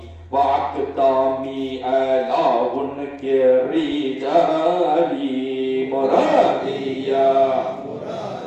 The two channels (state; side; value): identical; both; correlation 1.00